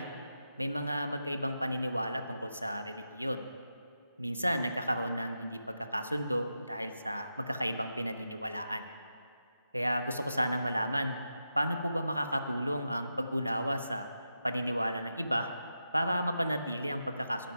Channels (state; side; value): inverted; both; correlation -0.88